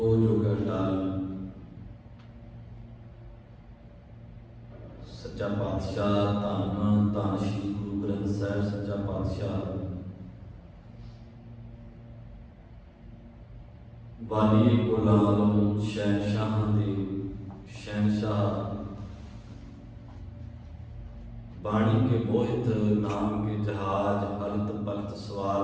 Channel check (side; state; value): both; identical; correlation 1.00